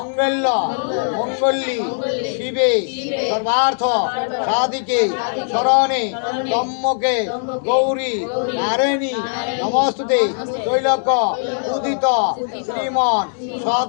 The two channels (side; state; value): right; silent; digital silence